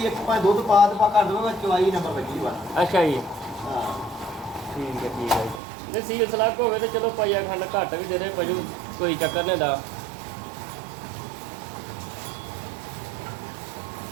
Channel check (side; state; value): left; drops out; at 5.6 s